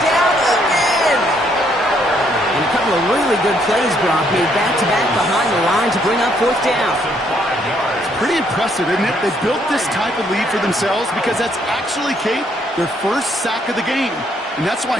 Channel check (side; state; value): both; normal; correlation 0.70